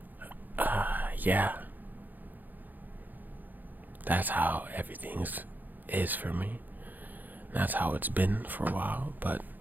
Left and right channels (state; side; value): late; left; 0.085 ms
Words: Yeah. That's how everything is for me. That's how it's been for a while, but